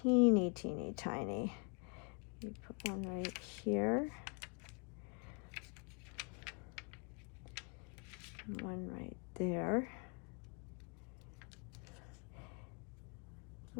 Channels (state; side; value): quieter; right; 36.3 dB